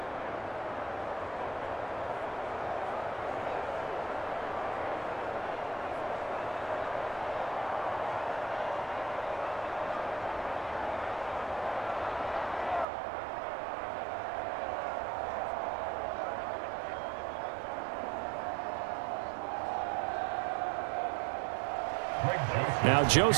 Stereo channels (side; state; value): left; drops out; at 12.9 s